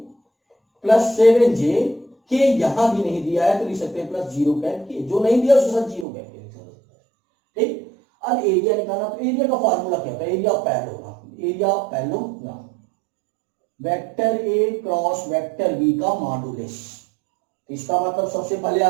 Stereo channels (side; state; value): left; drops out; at 6.1 s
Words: प्लस 7j, के यहां भी नहीं दिया है तो लिख सकते हैं +0 कैप के, जो नहीं दिया उसके साथ 0 कैप के लिख सकते हैं। ठीक, अब एरिया निकालना, तो एरिया का फॉर्मूला क्या होता है, area of parallelogram, area of parallelogram vector A cross vector B का मॉडुलस। इसका मतलब सबसे पहले